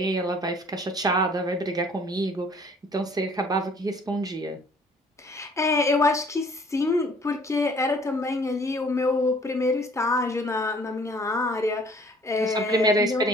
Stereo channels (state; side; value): normal; both; correlation 0.56